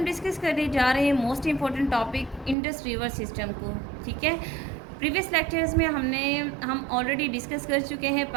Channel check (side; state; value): left; drops out; at 2.6 s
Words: डिस्कस करने जा रहे हैं most important topic Indus river system को। ठीक है, प्रीवियस लेक्चर्स में हम ऑलरेडी डिस्कस कर चुके हैं